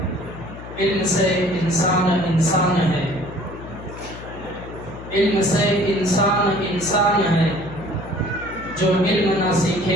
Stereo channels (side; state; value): left; noise; hum, 13 dB below the sound